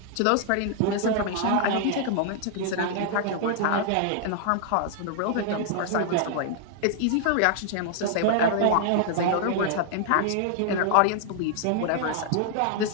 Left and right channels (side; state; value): both; different; correlation 0.00